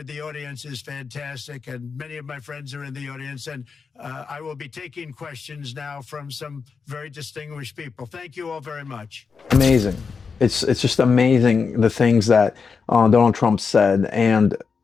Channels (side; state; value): right; quieter; 5.4 dB